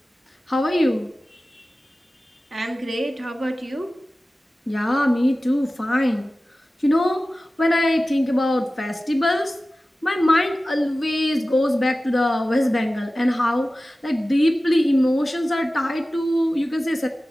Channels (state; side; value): normal; both; correlation 0.96